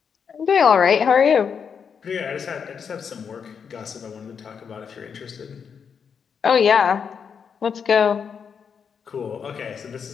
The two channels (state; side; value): quieter; right; 6.7 dB